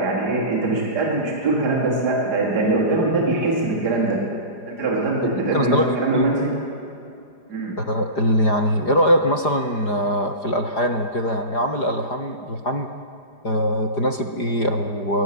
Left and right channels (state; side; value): late; right; 4.9 ms